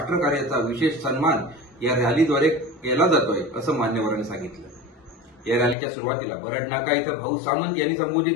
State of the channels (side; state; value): right; drops out; at 5.8 s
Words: विशेष सन्मान या रॅलीद्वारे केला जातोय असं मान्यवरांनी सांगितलं। या रॅलीच्या सुरुवातीला बरड नाका इथं भाऊ सामंत यांनी